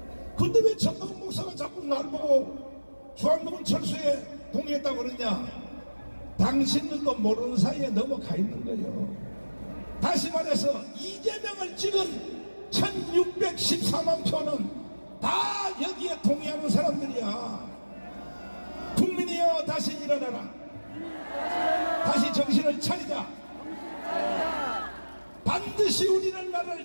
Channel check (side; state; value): both; inverted; correlation -1.00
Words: 근데 왜 전광훈 목사가 자꾸 날 보고 주한미군 철수에 동의했다고 그러냐. 당신들도 모르는 사이에 넘어가 있는 거예요. 다시 말해서 이재명을 찍은 1614만 표는 다 여기에 동의하는 사람들이야. 국민이여 다시 일어나라. 다시 정신을 차리자. 반드시 우리는